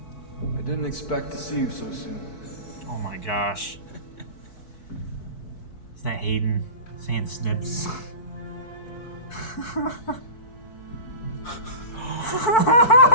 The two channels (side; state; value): right; late; 4.6 ms